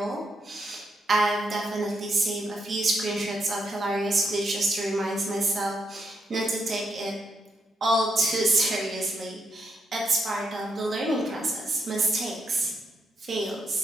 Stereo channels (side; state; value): both; normal; correlation 0.80